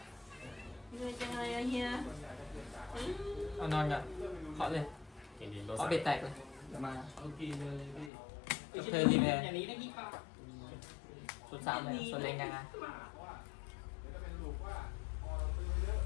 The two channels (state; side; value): drops out; right; at 8.1 s